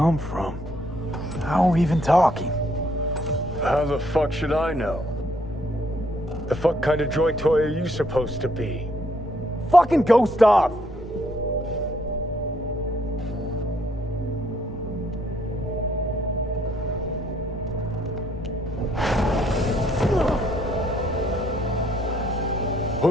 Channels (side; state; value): both; normal; correlation 0.69